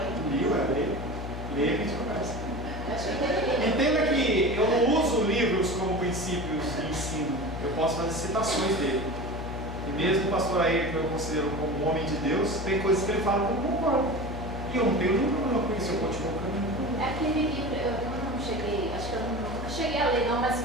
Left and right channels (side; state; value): left; noise; hum, 7 dB below the sound